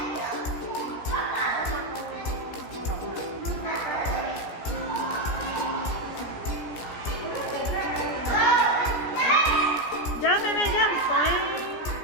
Jump, baby, jump.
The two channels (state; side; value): late; right; 17 ms